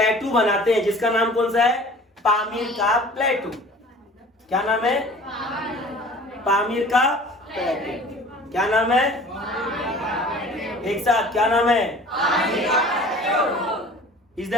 बनाते हैं जिसका नाम कौन सा है? पामीर का प्लेटू। क्या नाम है? पामीर का प्लेटू। क्या नाम है? एक साथ क्या नाम है? Is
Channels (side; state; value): both; normal; correlation 0.46